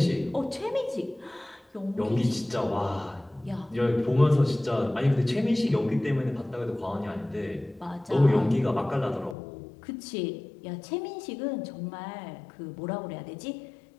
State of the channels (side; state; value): right; drops out; at 9.3 s